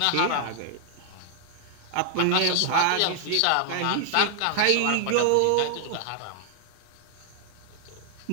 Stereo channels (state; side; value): different; both; correlation 0.00